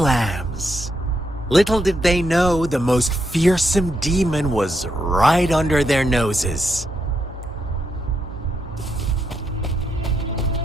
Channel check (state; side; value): normal; both; correlation 0.80